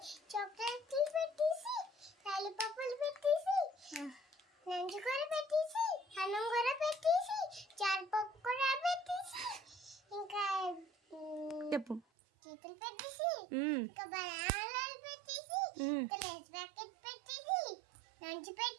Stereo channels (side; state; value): left; drops out; at 12.0 s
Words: చాక్లెట్లు పెట్టేసి లాలీపాపులు పెట్టేసి నంజు కూర పెట్టేసి అన్నం కూర పెట్టేసి చారుపప్పు కూర పెట్టేసి ఇంకా చెప్పు చేతులు పెట్టేసి ఇంకా బనానాలు పెట్టేసి ఇంకా లేస్ ప్యాకెట్ పెట్టేసి నంజు